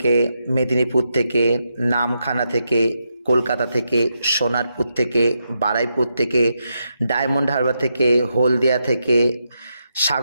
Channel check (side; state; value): both; inverted; correlation -0.84